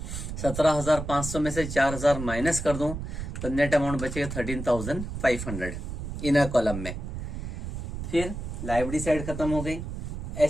17,500 में से 4,000 माइनस कर दूं तो नेट अमाउंट बचेगा 13,500 इनर कॉलम में। फिर लाइब्रेरी साइड खत्म हो गई।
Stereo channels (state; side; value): noise; right; rumble, 6 dB below the sound